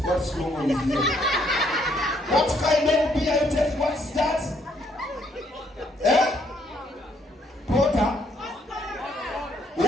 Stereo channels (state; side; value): normal; both; correlation 0.69